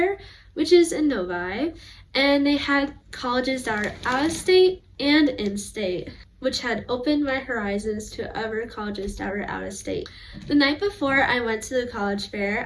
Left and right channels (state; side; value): identical; both; correlation 1.00